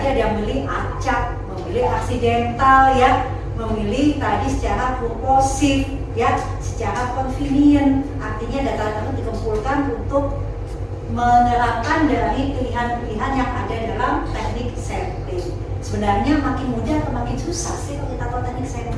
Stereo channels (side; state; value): both; identical; correlation 1.00